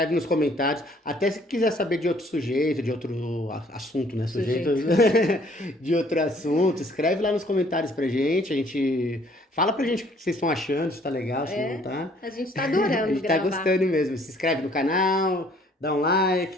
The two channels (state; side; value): normal; both; correlation 0.60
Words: nos comentários. Até se quiser saber de outro sujeito, de outro assunto, né? Sujeito Sujeito. de outro assunto, escreve lá nos comentários pra gente. A gente fala pra gente o que vocês estão achando, se tá legal, se não tá. A gente está A adorando gente tá gravar. gostando mesmo. Se inscreve no canal, dá um